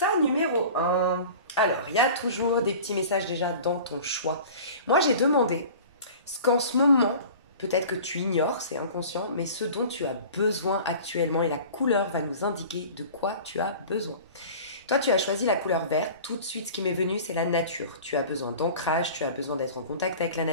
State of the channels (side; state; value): both; inverted; correlation -0.40